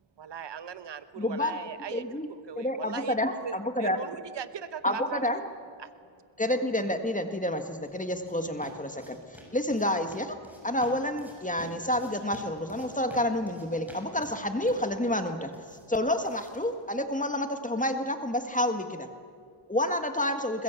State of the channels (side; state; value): both; normal; correlation 0.12